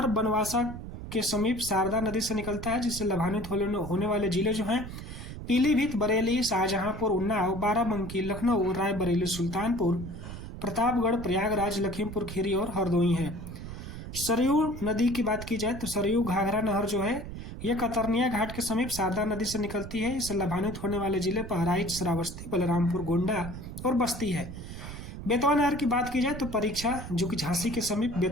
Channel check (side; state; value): right; noise; rumble, 10 dB below the sound